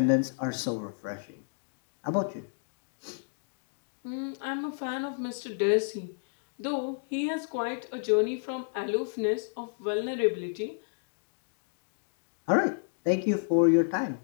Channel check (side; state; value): right; silent; digital silence